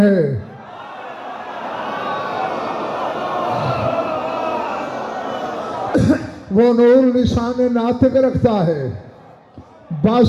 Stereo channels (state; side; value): identical; both; correlation 1.00